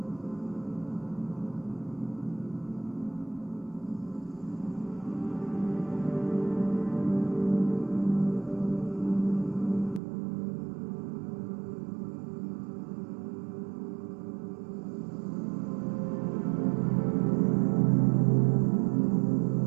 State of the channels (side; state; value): left; drops out; at 10.0 s